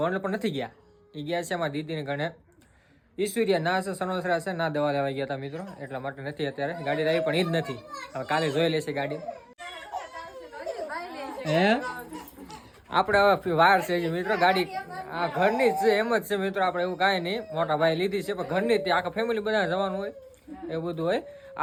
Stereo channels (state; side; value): identical; both; correlation 1.00